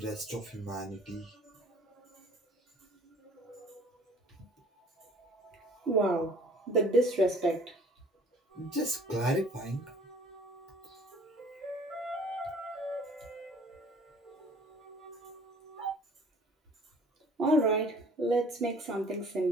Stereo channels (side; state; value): both; normal; correlation 0.52